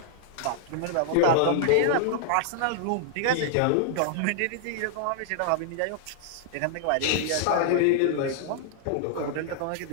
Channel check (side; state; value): both; different; correlation -0.01